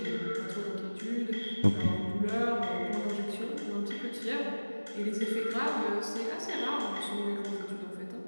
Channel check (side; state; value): both; inverted; correlation -1.00